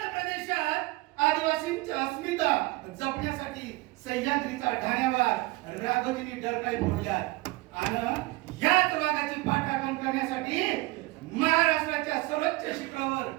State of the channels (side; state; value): left; quieter; 21.0 dB